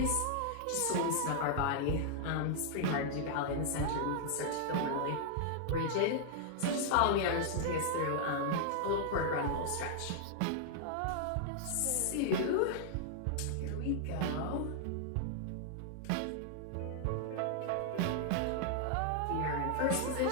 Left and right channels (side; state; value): both; different; correlation -0.01